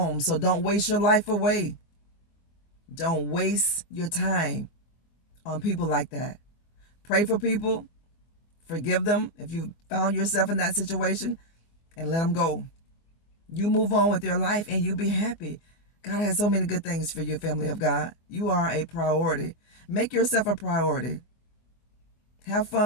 So don't waste your life away. Don't waste your time on people like that. Pray for people. Forgive them if you found yourself in that situation, and let them go. You move on with your life and you be happy. God has so many good things for you, family of God. You are a priority. Make yourself a priority. Have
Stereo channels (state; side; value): late; right; 24 ms